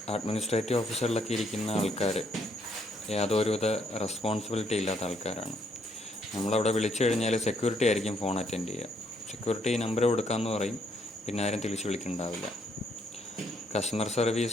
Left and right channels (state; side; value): normal; both; correlation 0.71